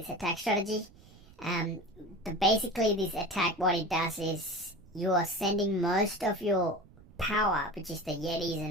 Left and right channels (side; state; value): right; noise; rumble, 23 dB below the sound